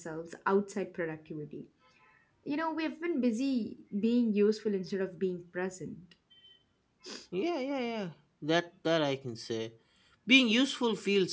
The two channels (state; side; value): identical; both; correlation 1.00